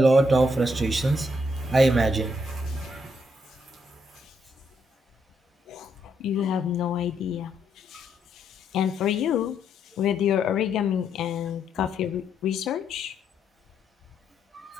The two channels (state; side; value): normal; both; correlation 0.75